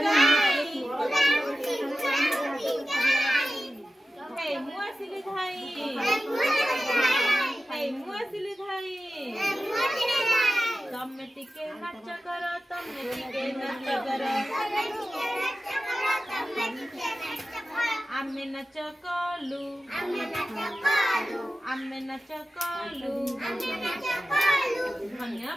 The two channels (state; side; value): normal; both; correlation 0.94